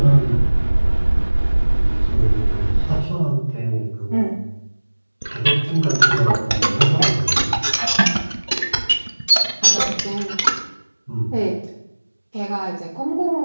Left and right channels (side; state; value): both; inverted; correlation -1.00